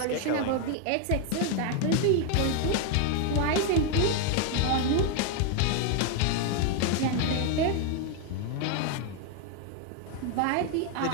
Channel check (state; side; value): different; both; correlation 0.01